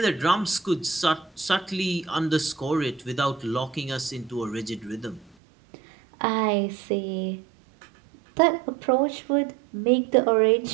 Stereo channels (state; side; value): drops out; left; at 5.4 s